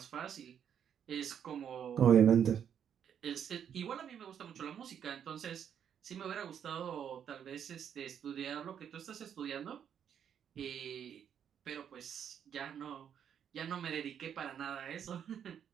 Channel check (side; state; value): left; quieter; 8.6 dB